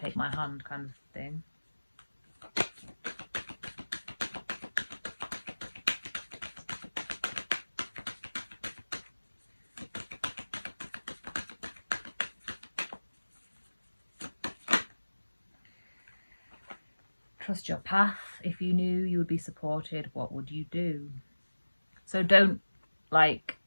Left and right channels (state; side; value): inverted; both; correlation -1.00